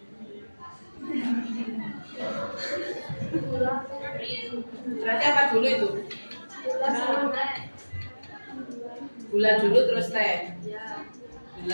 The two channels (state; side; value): inverted; both; correlation -1.00